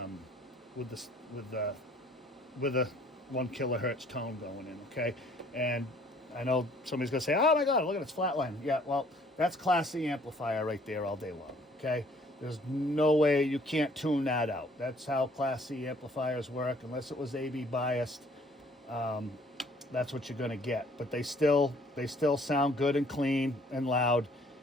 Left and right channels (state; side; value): normal; both; correlation 0.59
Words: with the 1 kilohertz tone going in, okay? And I know somebody's gonna say, oh my God, look at it's flatline. Yeah, well, that's Class C amplifier right there all day long, okay? There's no way you can't tune that out. That's how Class C amplifiers work. Unless it was AB biased, that's what you're gonna get. But they still sound good and clean and loud,